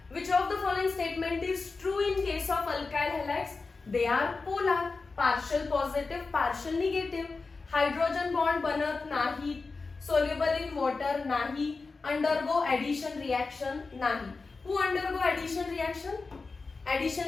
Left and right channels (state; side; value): quieter; right; 4.1 dB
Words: Which of the following statement is true in case of alkyl halides. They are polar, partial positive, partial negative. Hydrogen bond बनत नाही. सोल्युबल इन वॉटर नाही. Undergo addition reaction नाही. Who undergo addition reaction. Addition